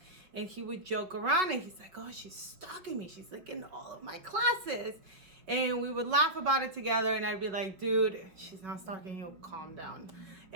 and he would joke around, and he's like, oh, she's stalking me, she's like in all of my classes. And we would laugh about it together, and I'd be like, dude, she's not stalking you, calm down.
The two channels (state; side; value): late; left; 5.3 ms